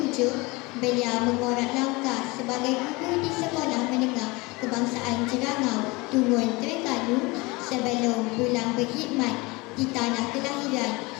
beliau mengorak langkah sebagai guru di Sekolah Menengah Kebangsaan Jerangau, Tungun Terengganu sebelum pulang berkhidmat di tanah kelahiran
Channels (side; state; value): right; quieter; 24.4 dB